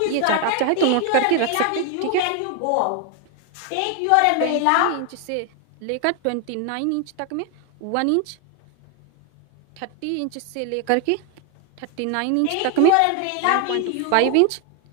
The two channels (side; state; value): both; different; correlation 0.01